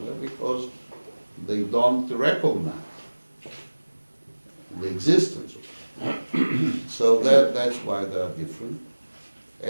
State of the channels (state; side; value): inverted; both; correlation -1.00